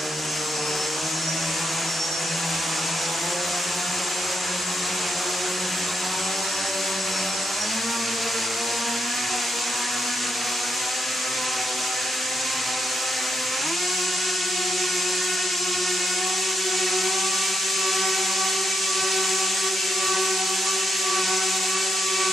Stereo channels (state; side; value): normal; both; correlation 0.82